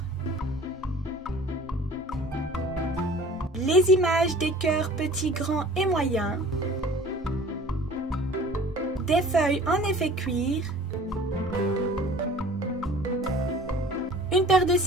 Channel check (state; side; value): normal; both; correlation 0.46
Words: les images des cœurs petits, grands et moyens, des feuilles en effet cuir, une paire de